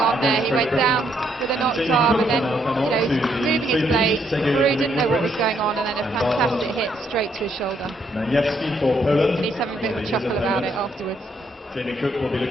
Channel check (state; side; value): normal; both; correlation 0.72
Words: on there. He went down with a knocked arm and then, moving his blade. Perrault didn't know what was going on, and then a fantastic hit straight to his shoulder. And he's having a bit of a chuckle about it afterwards. Jamie Cook will be